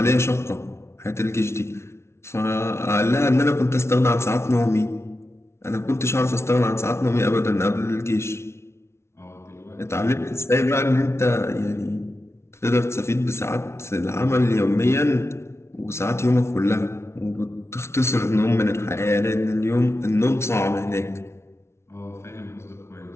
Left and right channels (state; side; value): late; right; 0.13 ms